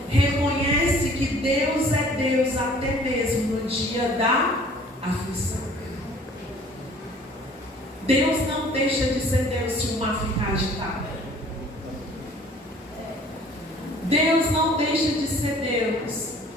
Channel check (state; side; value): normal; both; correlation 0.52